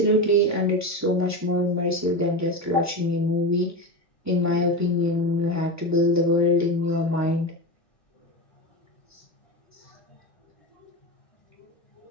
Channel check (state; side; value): normal; both; correlation 0.20